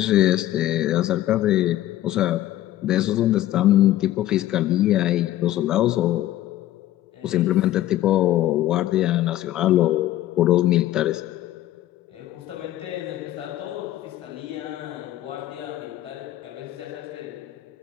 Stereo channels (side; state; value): right; quieter; 14.1 dB